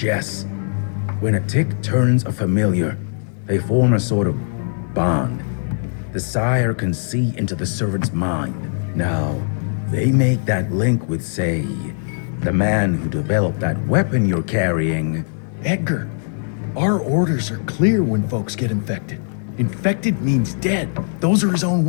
when a tick turns a familiar, they form a sort of bond. The sire can see into the servant's mind. Now, they make that link with, say, the man who developed that weapon you're carrying. Edgar, our orders are clear when folks get infected. Infected means dead. Those are his own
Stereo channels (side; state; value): right; silent; 61 dB below the other